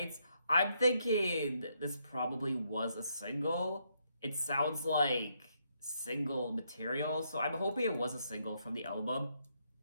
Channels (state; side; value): inverted; both; correlation -0.76